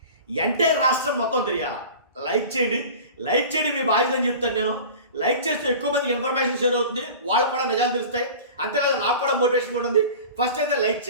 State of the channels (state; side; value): inverted; both; correlation -0.37